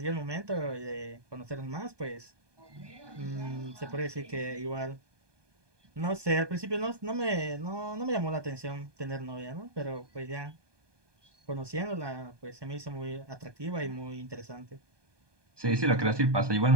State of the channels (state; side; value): late; left; 1.2 ms